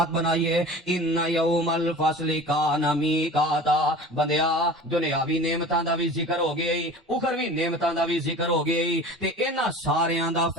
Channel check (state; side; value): normal; both; correlation 0.39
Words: بنائیے ان یوم الفصل کان میقاتا بندیا دنیاوی نعمتاں دا بھی ذکر ہو گیا اخروی نعمتاں دا بھی ذکر ہو گیا تے انہاں ساریاں دا